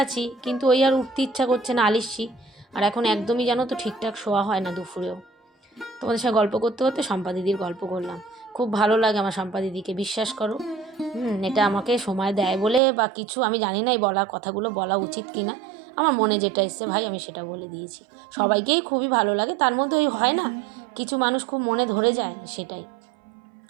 আছি কিন্তু ওই আর উঠতে ইচ্ছা করছে না, আলিস্যি। আর এখন একদমই জানো তো ঠিকঠাক শোয়া হয় না দুপুরেও। তোমাদের সঙ্গে গল্প করতে করতে শম্পা দিদির গল্প করলাম। খুব ভালো লাগে আমার শম্পা দিদিকে, বিশ্বাস করো। এটা আমাকে সময় দেয় বলে বা কিছু, আমি জানি না এই কথাগুলো বলা উচিত কি না। আমার মনে যেটা এসছে ভাই আমি সেটা বলে দিয়েছি। সবাইকেই খুবই ভালো লাগে, তার মধ্যে ওই হয় না কিছু মানুষ খুব মনে ধরে যায়, সেটাই।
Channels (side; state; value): left; drops out; at 12.8 s